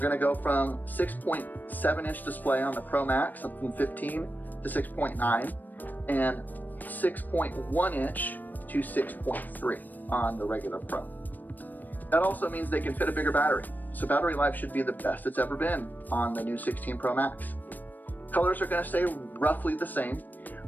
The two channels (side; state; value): right; late; 0.087 ms